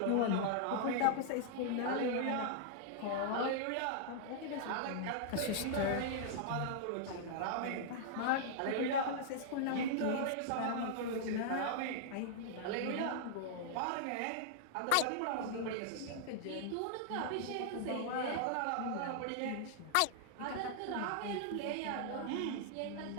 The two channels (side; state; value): both; different; correlation -0.01